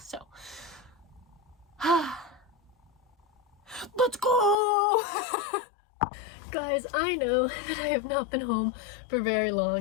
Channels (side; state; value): right; drops out; at 4.5 s